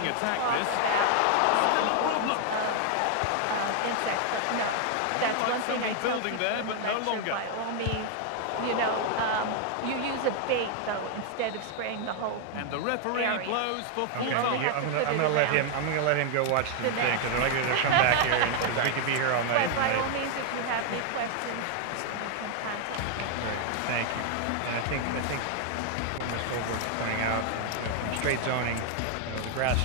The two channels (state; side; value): different; both; correlation 0.00